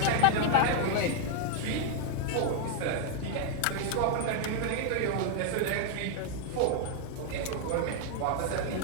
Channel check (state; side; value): different; both; correlation 0.00